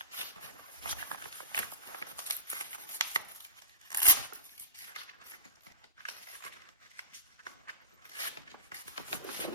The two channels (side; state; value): both; inverted; correlation -0.34